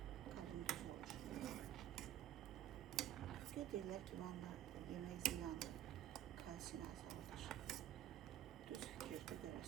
Qalın düz olur. Deyirlər ki, vanla yemək ziyandır. Kalsiyini azaldır. Düz fikirdir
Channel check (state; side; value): quieter; left; 11.8 dB